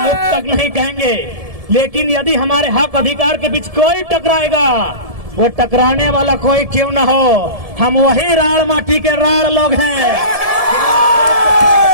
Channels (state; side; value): late; left; 1.7 ms